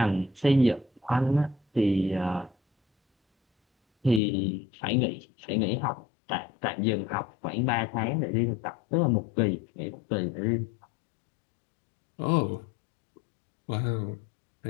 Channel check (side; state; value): right; drops out; at 4.2 s